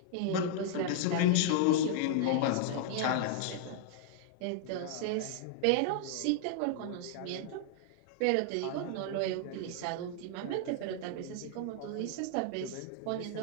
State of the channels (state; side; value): different; both; correlation -0.01